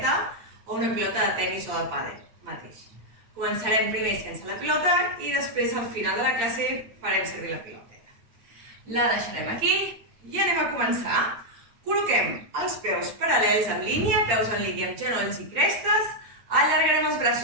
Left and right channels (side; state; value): left; late; 8.8 ms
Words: o una pilota de tenis o de pàdel mateix. Començarem primer sense la pilota i després al final de la classe farem servir la piloteta. La deixarem aquí i anem a començar. Col·loquem els peus paral·lels en línia, peus en línia amb genolls i crestes. Allargarem els